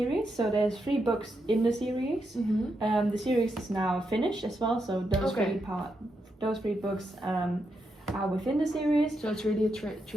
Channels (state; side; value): normal; both; correlation 0.83